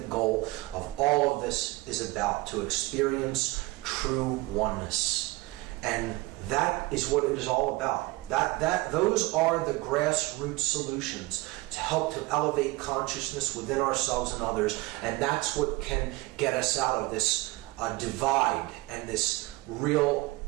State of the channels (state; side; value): quieter; left; 21.5 dB